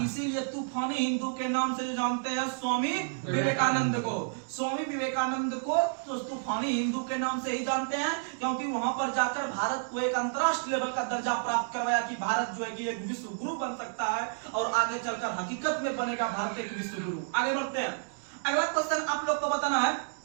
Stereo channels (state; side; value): silent; left; digital silence